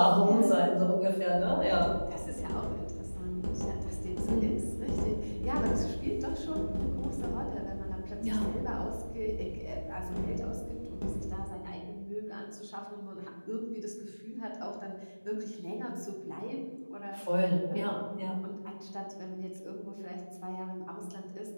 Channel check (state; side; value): inverted; both; correlation -1.00